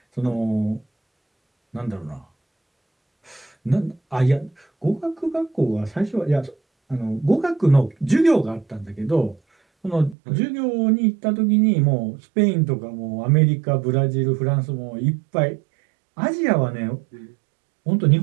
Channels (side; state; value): left; drops out; at 10.2 s